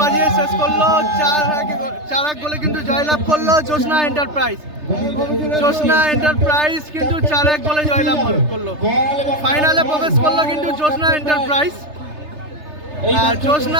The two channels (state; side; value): late; left; 3.3 ms